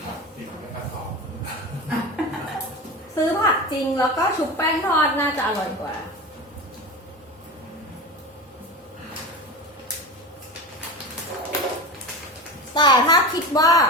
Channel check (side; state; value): both; normal; correlation 0.26